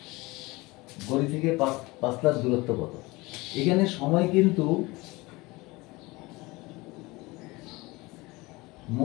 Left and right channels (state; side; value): quieter; right; 22.6 dB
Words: বাড়ি থেকে পাঁচলার দূরত্ব কত? এখানে সময় কিন্তু